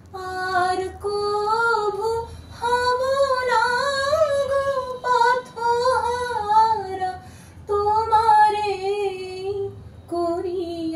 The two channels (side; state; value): both; identical; correlation 1.00